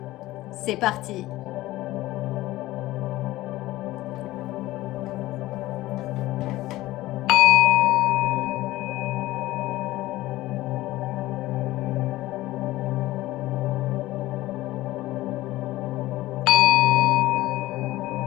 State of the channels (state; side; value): quieter; right; 17.2 dB